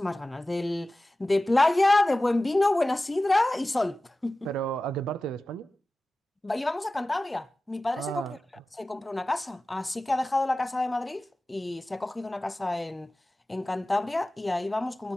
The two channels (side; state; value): both; normal; correlation 0.96